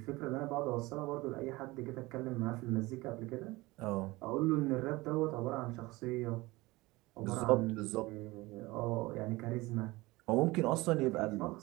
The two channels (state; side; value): quieter; left; 21.1 dB